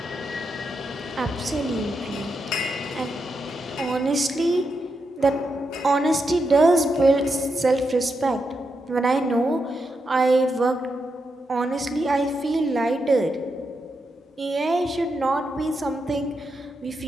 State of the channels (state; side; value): normal; both; correlation 0.85